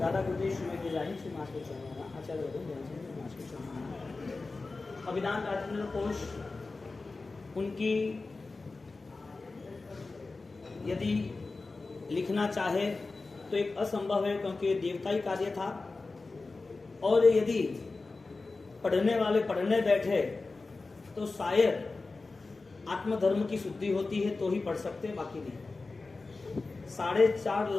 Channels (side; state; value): right; quieter; 3.7 dB